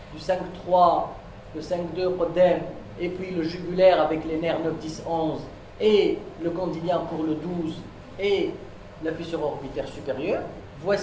du 5-3, le 5-2 podème, et puis le jugulaire avec les nerfs 9, 10, 11, et le condylien pour le 12, et la fissure orbitaire supérieure.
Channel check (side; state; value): both; identical; correlation 1.00